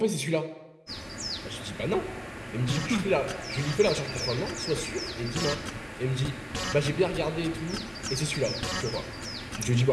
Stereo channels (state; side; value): identical; both; correlation 1.00